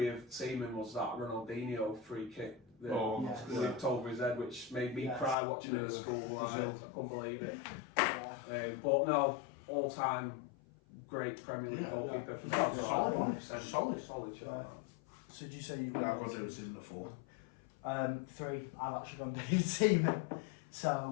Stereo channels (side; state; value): right; drops out; at 5.4 s